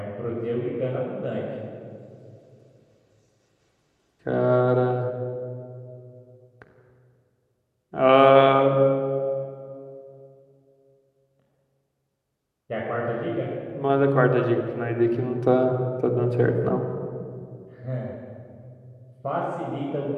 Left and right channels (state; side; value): identical; both; correlation 1.00